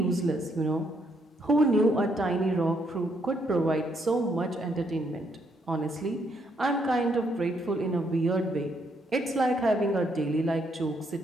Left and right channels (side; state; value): both; normal; correlation 0.74